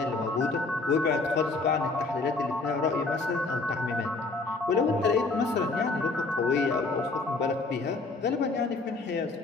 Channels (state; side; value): quieter; right; 3.6 dB